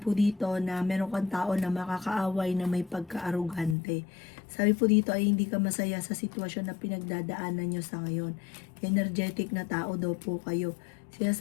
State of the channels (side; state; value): right; drops out; at 3.8 s